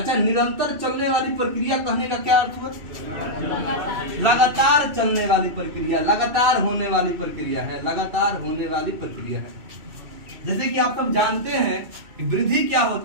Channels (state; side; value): late; left; 2.5 ms